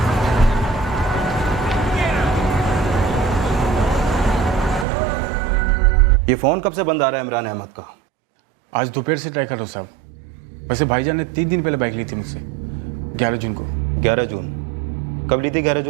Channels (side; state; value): left; drops out; at 4.9 s